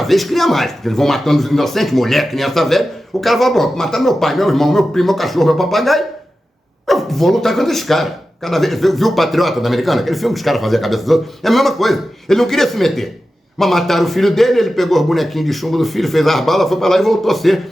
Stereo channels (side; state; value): both; normal; correlation 0.93